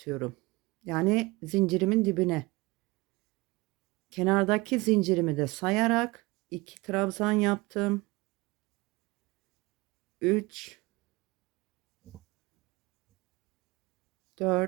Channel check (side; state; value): left; quieter; 22.9 dB